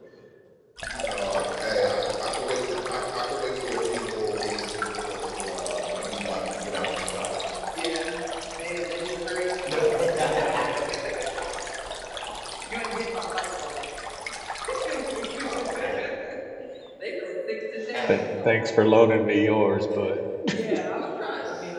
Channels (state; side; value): identical; both; correlation 1.00